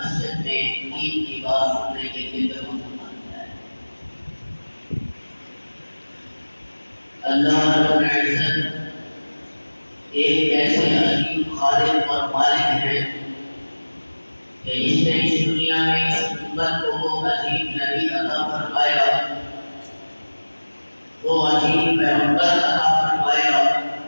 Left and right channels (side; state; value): both; inverted; correlation -1.00